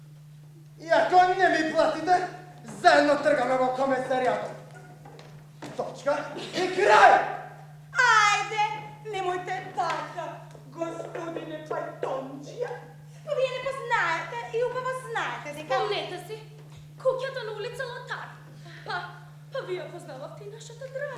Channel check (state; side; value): identical; both; correlation 1.00